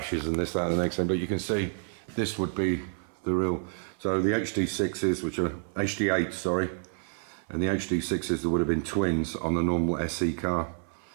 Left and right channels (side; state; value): left; silent; 57 dB below the other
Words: and this, that and the next thing, but you can see this would be the real, so the HD6s, which are HD8, sorry, and the HD6s that would have been twins on the normal SE car.